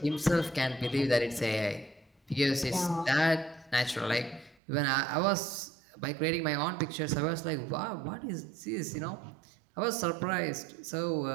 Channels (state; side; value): drops out; left; at 4.5 s